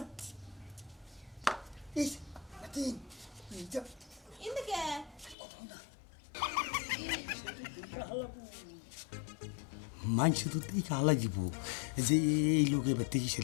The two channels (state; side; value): drops out; right; at 5.4 s